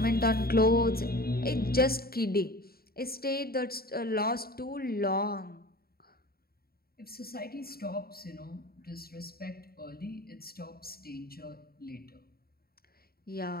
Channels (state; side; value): late; right; 0.44 ms